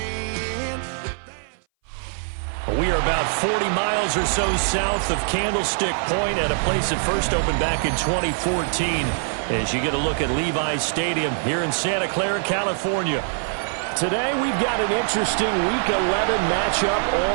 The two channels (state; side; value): silent; left; 60 dB below the other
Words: in. We are about 40 miles or so south of Candlestick Point at a place that first opened back in 2014 as you get a look at Levi's Stadium here in Santa Clara, California. Today, we've got an interesting Week 11 matchup